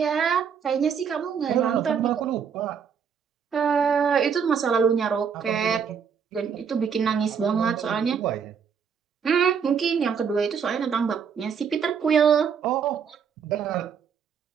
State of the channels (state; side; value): quieter; left; 6.9 dB